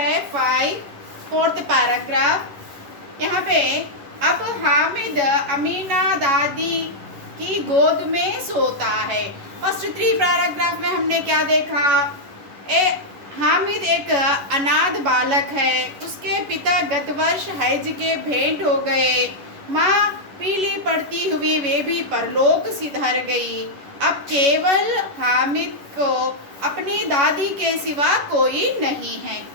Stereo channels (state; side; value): late; left; 11 ms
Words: 5 फोर्थ पैराग्राफ। यहाँ पे अब हामिद अमीना दादी की गोद में सोता है। फर्स्ट 3 पैराग्राफ में हमने क्या देखा? हामिद एक अनाथ बालक है। उसके पिता गत वर्ष हज के भेंट हो गए। माँ पीली पड़ती हुई वे भी परलोक सिधार गई। अब केवल हामिद को अपनी दादी के सिवा कोई नहीं है।